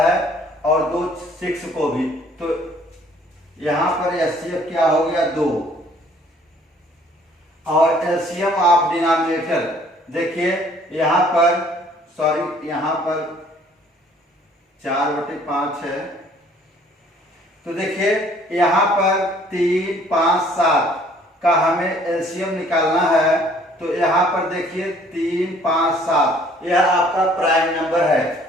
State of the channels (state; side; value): normal; both; correlation 0.58